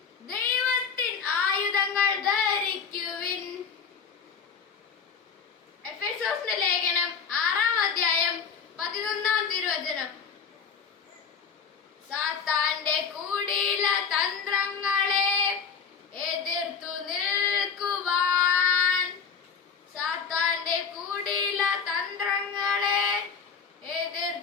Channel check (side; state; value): right; quieter; 6.2 dB